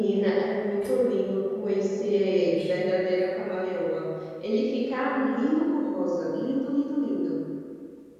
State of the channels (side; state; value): both; identical; correlation 1.00